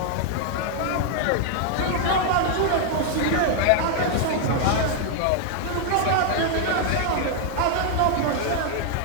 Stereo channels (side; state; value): both; different; correlation 0.00